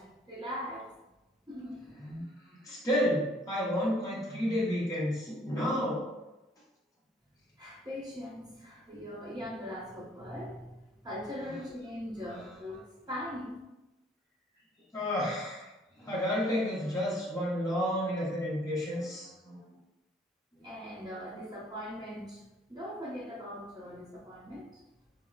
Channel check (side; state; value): both; normal; correlation 0.60